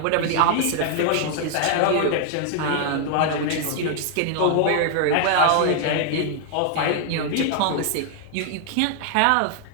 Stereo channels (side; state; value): both; different; correlation 0.00